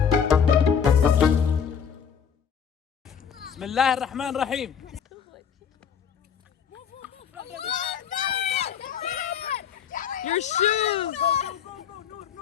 بسم الله الرحمن الرحيم. Your shoes.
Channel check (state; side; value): quieter; right; 7.4 dB